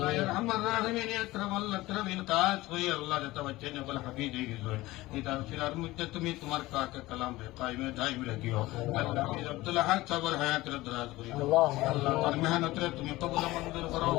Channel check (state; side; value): quieter; right; 18.7 dB